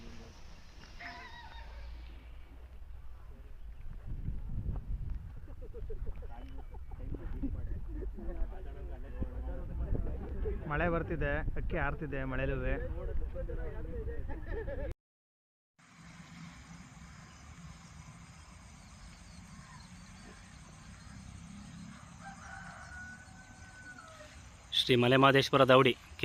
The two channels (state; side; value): identical; both; correlation 1.00